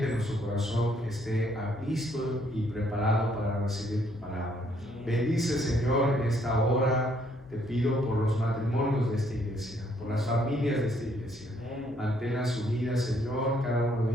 nuestro corazón esté listo y preparado para recibir tu palabra. Bendice, Señor, en esta hora. Te pido por los matrimonios de esta iglesia, por las familias de esta iglesia. Manténlas unidas, Señor. Cada uno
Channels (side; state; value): left; noise; hum, 25 dB below the sound